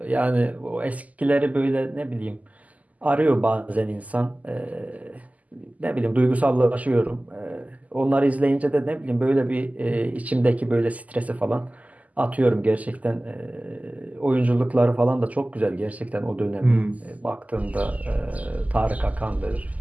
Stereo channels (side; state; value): left; late; 0.075 ms